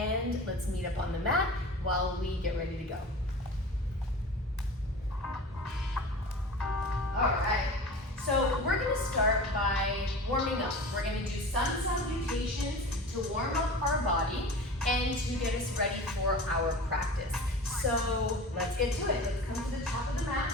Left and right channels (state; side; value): normal; both; correlation 0.36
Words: let's meet up on the mat while we get ready to go. All right, so we're gonna start by warming up. We're gonna do sun salutations to warm up our body and to get us ready for our practice. So let's get to it. Let's come to the top of the mat.